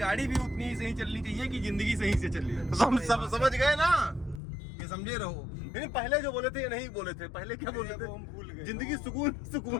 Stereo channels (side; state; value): right; drops out; at 4.4 s